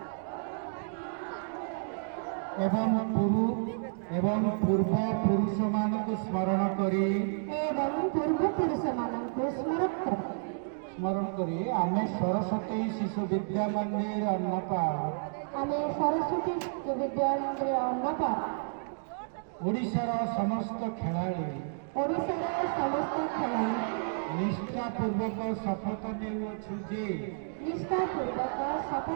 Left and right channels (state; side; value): silent; left; digital silence